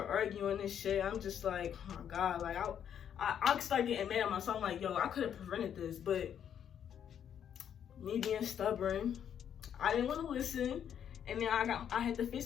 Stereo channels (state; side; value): quieter; right; 9.0 dB